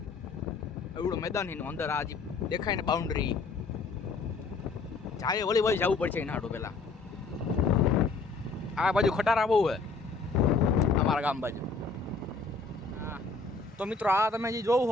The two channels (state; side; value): quieter; right; 4.1 dB